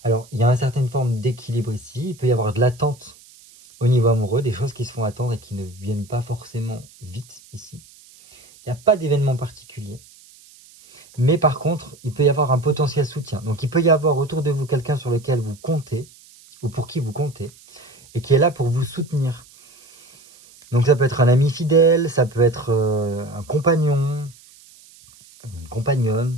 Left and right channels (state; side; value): noise; right; hiss, 25 dB below the sound